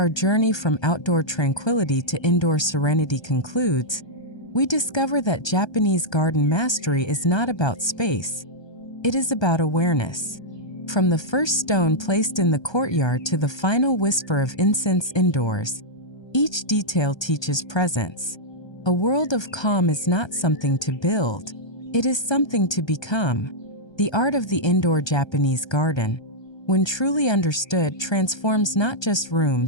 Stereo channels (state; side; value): late; right; 1.3 ms